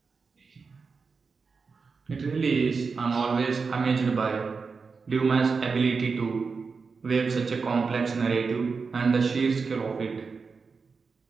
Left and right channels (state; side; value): quieter; left; 4.9 dB